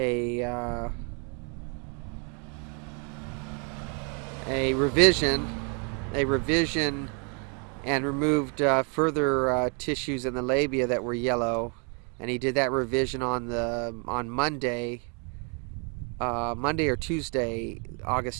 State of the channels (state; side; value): quieter; left; 37.4 dB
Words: revision and removed further tissues in the labia that were yellow, and he did that revision on Monday or Tuesday,